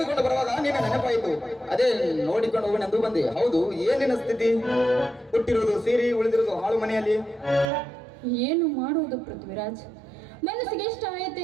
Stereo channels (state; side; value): drops out; left; at 7.7 s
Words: ಬರುವಾಗ ನಿನ್ನ ನೆನಪಾಯಿತು. ಅದೇ ನೋಡಿಕೊಂಡು ಹೋಗಿ ಬಂದೆ. ಹೌದು, ಏನಿನ ಸ್ಥಿತಿ? ಹುಟ್ಟಿರೋದು ಸೀರೆ, ಉಳಿದಿರೋದು ಹಾಳು ಮನೆಯಲ್ಲಿ. ಏನು ಮಾಡುವುದು ಪೃಥ್ವಿರಾಜ್, ಮನಸ್ಸಿಗೆ ಇಷ್ಟ